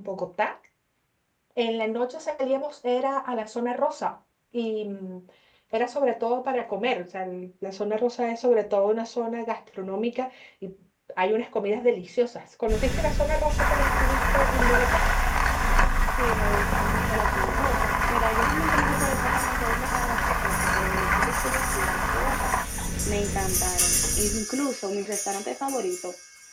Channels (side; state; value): both; identical; correlation 1.00